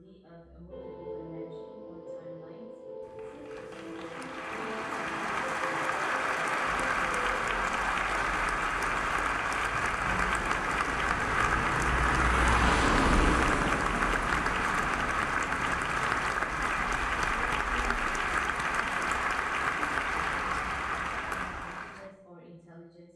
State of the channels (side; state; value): both; identical; correlation 1.00